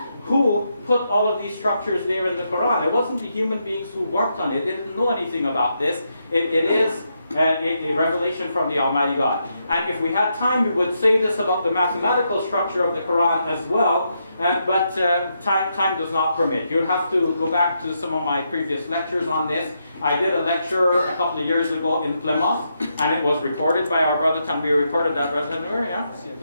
who put all of these structures there in the Quran? It wasn't the human beings who worked on it. They didn't know anything about this. It is a revelation from the Almighty God. And if we had time, we would say this about the mathematical structure of the Quran as well, but time does not permit. You'll have to go back to some of my previous lectures on this. I did a lecture a couple of years ago in Plymouth, and it was recorded by our brother Tanvir. Recorded that, brother Tanvir,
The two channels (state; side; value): inverted; both; correlation -0.81